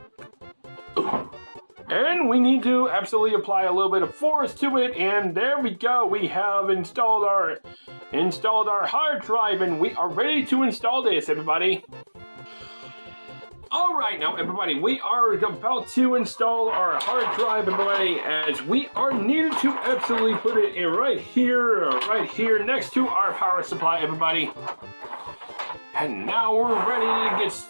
and we need to absolutely apply a little bit of force to it, and there we go. We have installed our hard drive, and we are ready to install this, everybody. Alright now everybody, we are about to install our hard drive, everybody, as we are needed to absolutely put it in right here next to our power supply, everybody. And now we're ready to get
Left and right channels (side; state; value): both; inverted; correlation -1.00